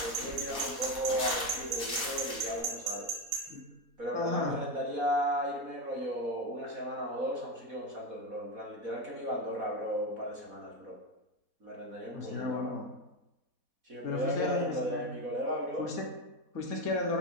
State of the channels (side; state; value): left; late; 4.1 ms